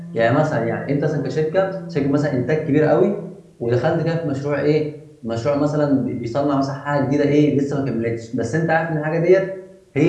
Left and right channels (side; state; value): both; identical; correlation 1.00